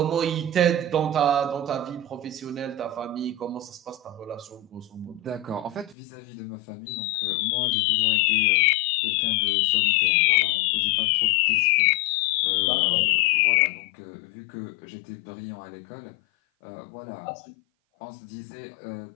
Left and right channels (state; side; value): drops out; right; at 6.0 s